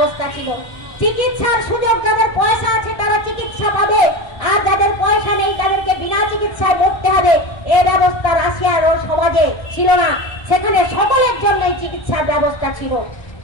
ছিল। চিকিৎসার সুযোগ যাদের পয়সা আছে তারা চিকিৎসা পাবে, আর যাদের পয়সা নেই তাদেরকে বিনা চিকিৎসায় মরতে হবে, এই ব্যবস্থা রাশিয়ার সমাজে ছিল না। সেখানে সকলের জন্যই চিকিৎসার ব্যবস্থা ছিল।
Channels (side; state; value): right; late; 1.3 ms